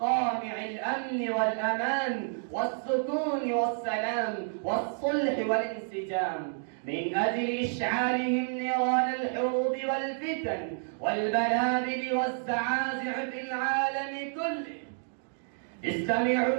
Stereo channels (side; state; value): left; silent; digital silence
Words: الأمن والأمان والسكون والسلام والصلح والانسجام، من أجل إشعالهم نيران الحروب والفتن والبلابل والزعازع في العالم كله.